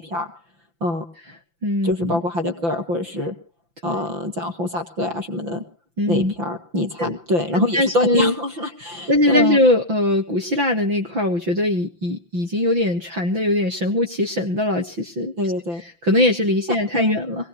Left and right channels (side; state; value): left; late; 5.9 ms